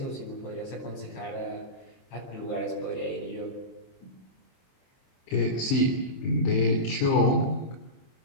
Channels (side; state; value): right; late; 23 ms